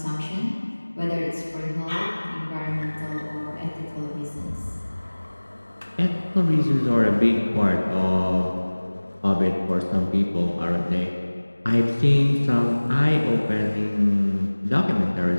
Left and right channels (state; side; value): inverted; both; correlation -1.00